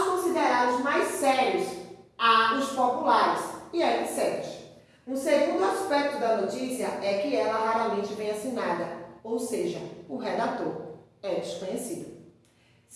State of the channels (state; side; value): identical; both; correlation 1.00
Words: considerados mais sérios, há os populares e etc. Um segundo aspecto da notícia é que ela raramente vem assinada, ou seja, o redator é desconhecido.